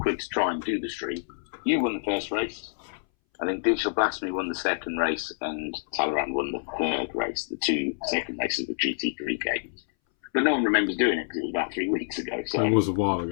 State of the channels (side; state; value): right; silent; 60 dB below the other